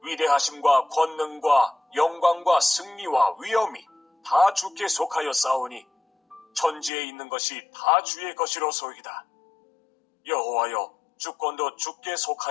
위대하심과 권능과 영광과 승리와 위엄이 다 주께 속하여 싸우니 천지에 있는 것이 다 주의 것이로소이다. 여호와여, 주권도 주께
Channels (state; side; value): drops out; right; at 6.9 s